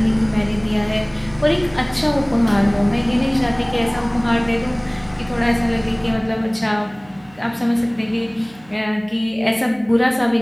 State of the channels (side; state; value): right; noise; hum, 26 dB below the sound